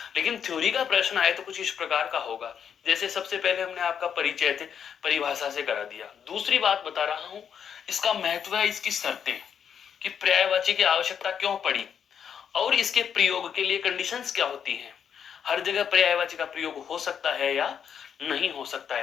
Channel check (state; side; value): quieter; right; 7.8 dB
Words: लेकिन थ्योरी का प्रश्न आए तो कुछ इस प्रकार का होगा। जैसे सबसे पहले हमने आपका परिचय थे परिभाषा से करा दिया। दूसरी बात बता रहा हूं, इसका महत्व है इसकी शर्तें, कि पर्यायवाची की आवश्यकता क्यों पड़ी और इसके प्रयोग के लिए कंडीशंस क्या होती हैं। हर जगह पर्यायवाची का प्रयोग हो सकता है या नहीं हो सकता